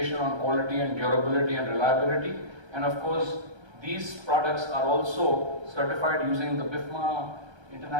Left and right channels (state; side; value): late; left; 1.3 ms